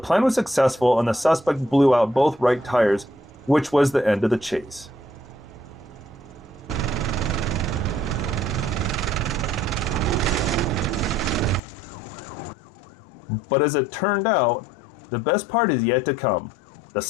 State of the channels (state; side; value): drops out; right; at 11.6 s